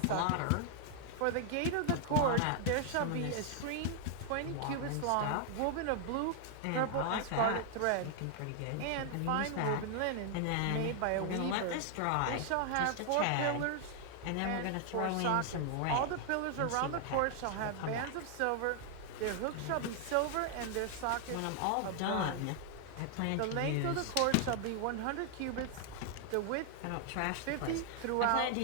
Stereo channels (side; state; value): both; different; correlation 0.00